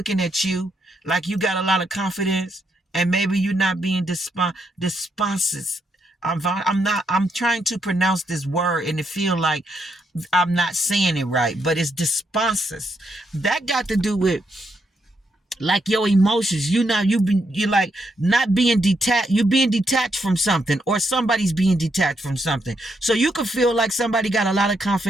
at you like you got a lot of confidence, and maybe you're not being desponses. I'm trying to pronounce this word, and it feel like I'm not saying it right, but it's desponses. That got to do with like your emotions. You're like not being detached. You're being detached from something, or somebody's being detached from something. So you could feel like somebody got a lot of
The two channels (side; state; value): both; normal; correlation 0.78